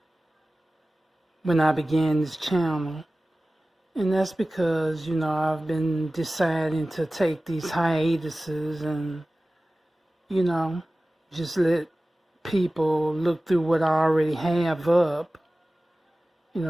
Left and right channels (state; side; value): normal; both; correlation 0.97